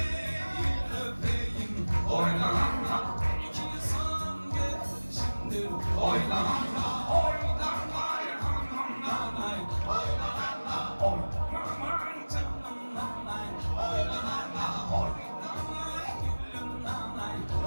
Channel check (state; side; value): inverted; both; correlation -1.00